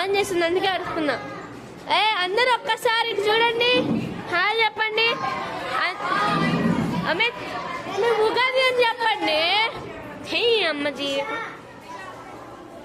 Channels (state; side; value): identical; both; correlation 1.00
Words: చేస్తుంది అందుకే అరుస్తున్నా. అందరూ ఒక్కసారి ఇటు చూడండి. హాయ్ చెప్పండి. అమిత్ ఉగాది అని చెప్పండి. హే అమ్మజీ.